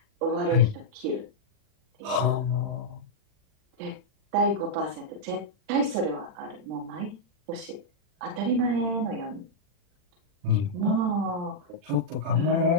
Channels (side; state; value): left; late; 40 ms